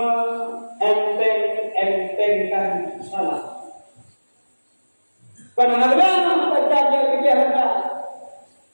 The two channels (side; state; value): both; inverted; correlation -1.00